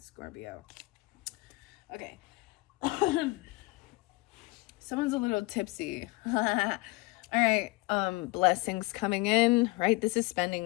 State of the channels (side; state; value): right; quieter; 23.2 dB